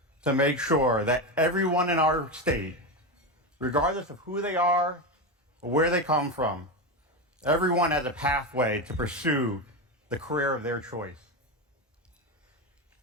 to make sure that everyone in our state, regardless of who they are or where they come from, everyone has a pathway to pursue the career of their choice.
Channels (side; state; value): both; normal; correlation 0.15